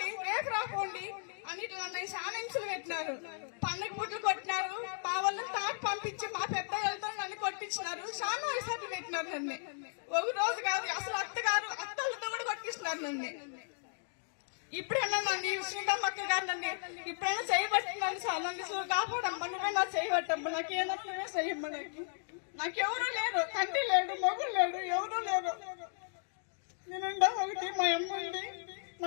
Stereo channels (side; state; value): right; silent; digital silence